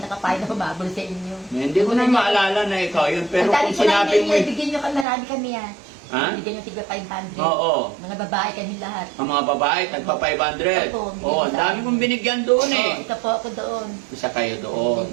nakapain na humabol sa inyo. Hindi ko na maalala na ikaw yun. Pero Ang dami kung ko na sinabi mo, bigyan nyo kami, marami kami yan. Ha? Bigyan yung tigba 500. Oo. Mga babae kami lahat. Ang mga babae, tagpa 500. Opo, Oo, ang dami kong binigyan doon eh. Oh, isa po ako doon. Isa kayo doon.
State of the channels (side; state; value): left; drops out; at 5.1 s